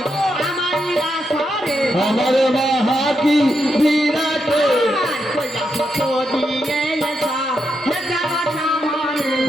আমার রাসরে আমার মা কি বিরাটে তো দিয়ে এসা হে জগৎ আমারে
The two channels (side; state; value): both; normal; correlation 0.83